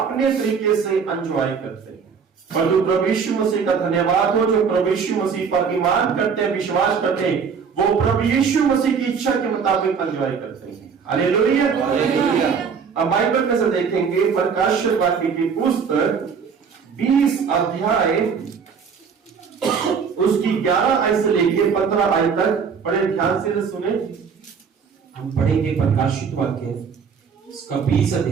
तरीके से एंजॉय करते हैं। पर जो प्रभु यीशु मसीह का धन्यवाद हो, जो प्रभु यीशु मसीह पर ईमान करते हैं, विश्वास करते हैं, वो प्रभु यीशु मसीह की इच्छा के मुताबिक एंजॉय करते हैं। Hallelujah, hallelujah. अब बाइबल में से देखेंगे प्रकाशित वाक्य की पुस्तक 20 अध्याय उसकी 11 आयत से लेके 15 आयत तक। बड़े ध्यान से सुने। हम पढ़ेंगे प्रकाशित वाक्य उसका 20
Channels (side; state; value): left; quieter; 6.2 dB